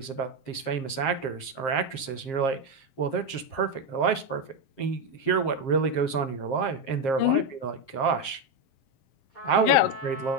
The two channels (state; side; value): late; right; 7.5 ms